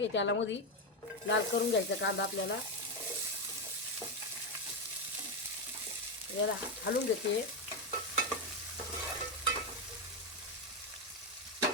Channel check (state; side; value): normal; both; correlation 0.09